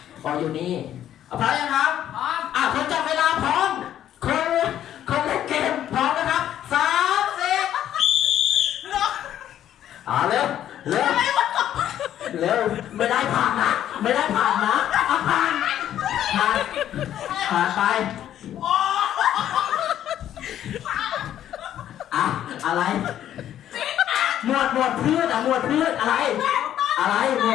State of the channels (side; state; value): right; quieter; 11.2 dB